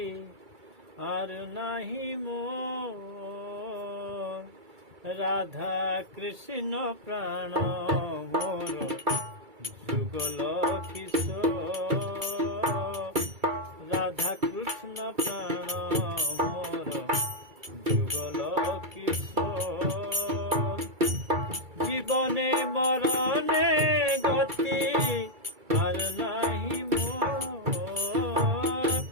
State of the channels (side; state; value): left; late; 2.3 ms